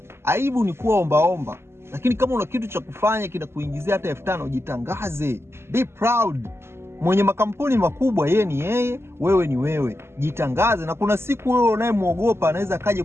Aibu ni kuwa ombaomba. Lakini kama una kitu cha kufanya kinakuingizia hata 5,000, jitangaze. Be proud. Mwenye makampuni makubwa yeye ni yeye, wewe ni wewe. Jitangaze, na kuna siku wewe unayemuogopa anaweza kaje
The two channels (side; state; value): left; late; 0.12 ms